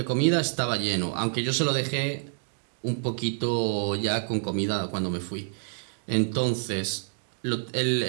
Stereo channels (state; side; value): silent; left; digital silence